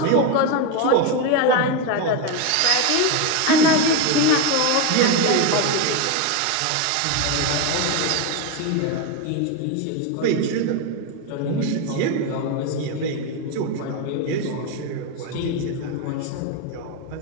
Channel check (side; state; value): both; different; correlation 0.03